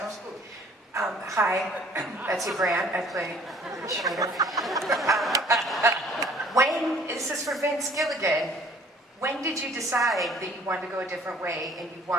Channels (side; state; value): both; normal; correlation 0.55